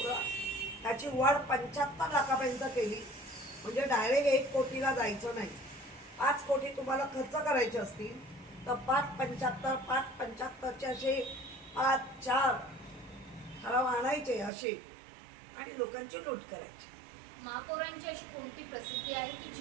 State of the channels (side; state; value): left; drops out; at 14.5 s